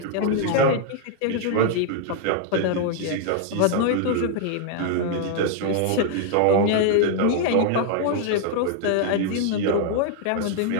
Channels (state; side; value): different; both; correlation 0.00